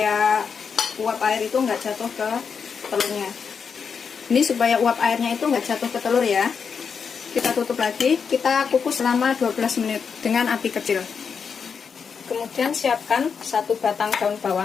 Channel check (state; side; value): quieter; right; 6.2 dB